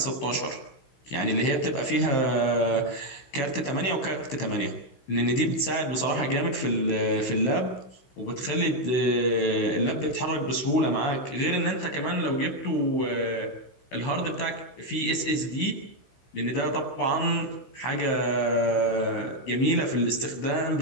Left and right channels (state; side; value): late; right; 16 ms